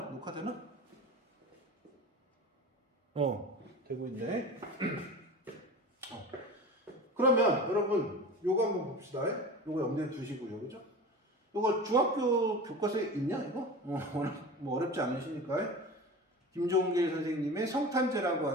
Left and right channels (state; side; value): normal; both; correlation 0.33